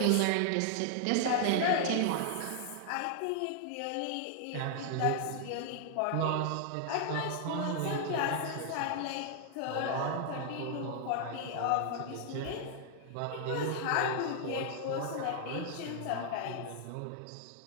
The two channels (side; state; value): both; different; correlation 0.00